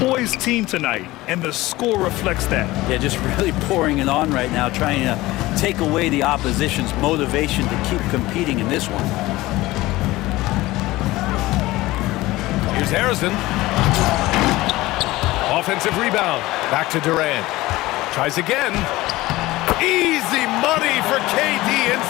team tonight, and the score reflects that. Yeah, just really pouring it on right now, trying to take away the opposition's motivation to keep competing in this one. Here's Harrison. Offensive rebound. Back to Durant. Tries again. Easy money for KD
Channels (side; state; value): right; quieter; 18.6 dB